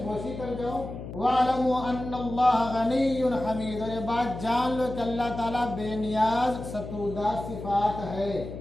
कर जाओ। वालमु अन्नल्लाह गनियुन हमीद, और ये बात जान लो कि अल्लाह ताला बेनियाज सतूदा सिफात है।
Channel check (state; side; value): noise; left; hum, 10 dB below the sound